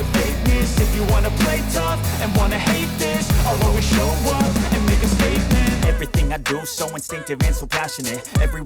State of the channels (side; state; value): both; identical; correlation 1.00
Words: fakeness. If you wanna play tough and wanna hate this, I'll always show up and make a statement. Everything I do so instinctive and so passionate. Every